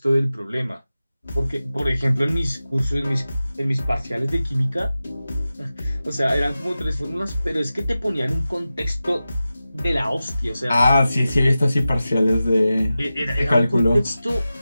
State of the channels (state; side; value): inverted; both; correlation -0.94